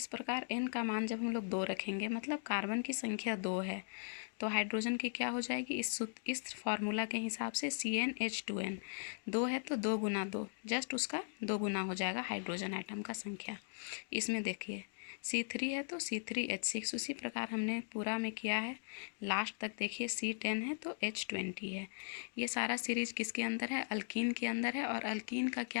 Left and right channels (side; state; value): right; silent; digital silence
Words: प्रकार n का मान जब हम लोग 2 रखेंगे, मतलब कार्बन की संख्या 2 है, तो हाइड्रोजन की क्या हो जाएगी, इस फार्मूला के हिसाब से CnH2n 2 है तो 2 गुना 2, जस्ट उसका 2 गुना हो जाएगा हाइड्रोजन आइटम का संख्या। इसमें देखिए C3 है तो C3H6, उसी प्रकार हमने पूरा में किया है। लास्ट तक देखिए C10 है तो H20 है। ये सारा सीरीज किसके अंदर है, अल्कीन के अंदर है। और अल्कीन का